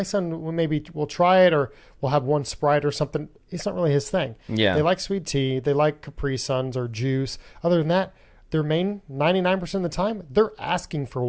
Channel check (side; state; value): both; identical; correlation 1.00